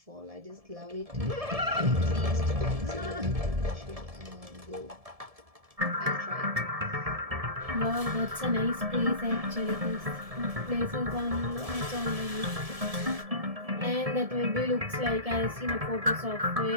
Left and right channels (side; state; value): left; late; 1.7 ms